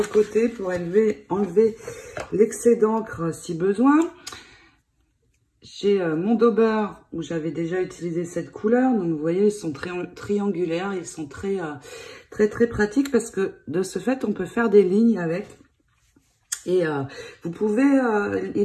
côté pour enlever l'excès d'encre si besoin. J'ai mon Dauber où j'avais déjà utilisé cette couleur. Donc, vous voyez, ils sont très triangulaires. Ils sont très pratiques parce que de ce fait, on peut faire des lignes avec. Et vous pouvez,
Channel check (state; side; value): identical; both; correlation 1.00